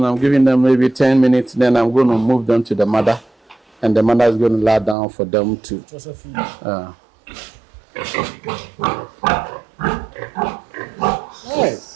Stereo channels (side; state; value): left; drops out; at 5.0 s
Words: I'm giving them maybe 10 minutes, then I'm going to move them to the mother, and the mother is going to lie down for them to.